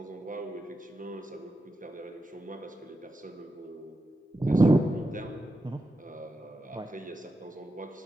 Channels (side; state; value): both; normal; correlation 0.88